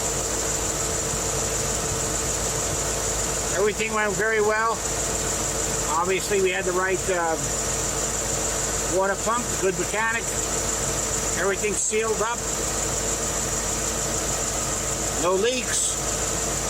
Everything went very well. Obviously, we had the right water pump, good mechanic. Everything sealed up. No leaks.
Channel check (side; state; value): both; identical; correlation 1.00